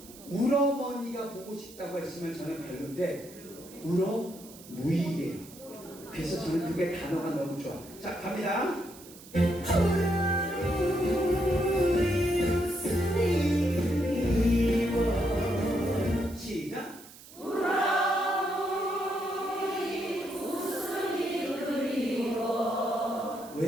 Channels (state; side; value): noise; right; hiss, 19 dB below the sound